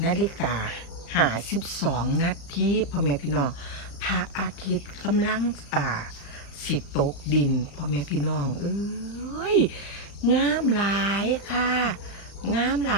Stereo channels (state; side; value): late; right; 35 ms